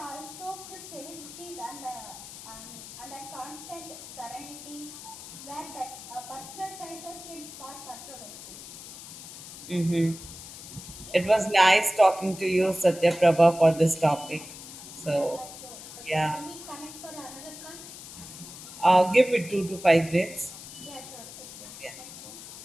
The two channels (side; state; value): left; noise; hiss, 13 dB below the sound